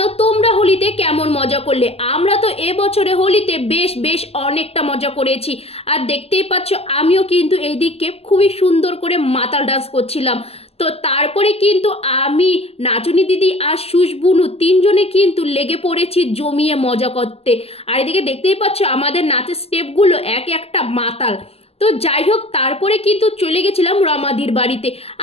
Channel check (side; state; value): right; late; 0.29 ms